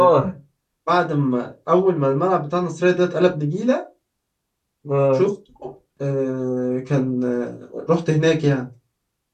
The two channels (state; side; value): identical; both; correlation 1.00